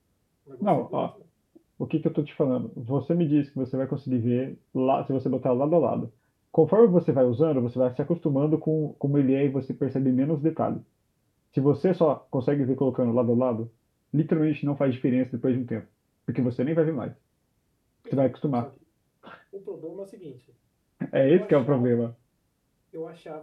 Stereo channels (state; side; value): identical; both; correlation 1.00